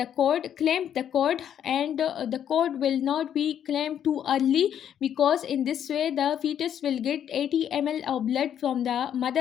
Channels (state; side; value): quieter; right; 9.5 dB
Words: cord, clamp the cord, and the cord will not be clamped too early, because in this way the fetus will get 80 ml of blood from the